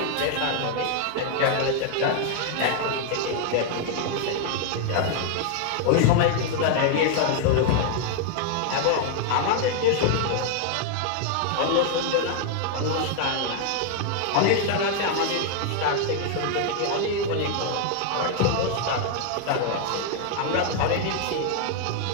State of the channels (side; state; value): both; different; correlation 0.00